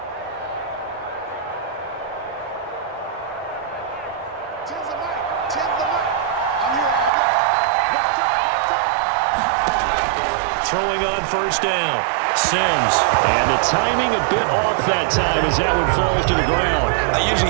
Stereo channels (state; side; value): drops out; left; at 7.1 s